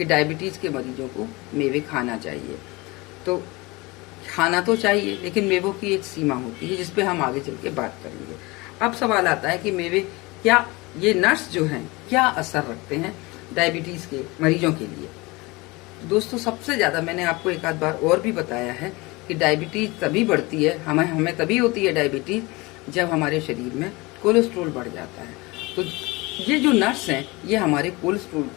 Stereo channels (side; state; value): right; quieter; 23.9 dB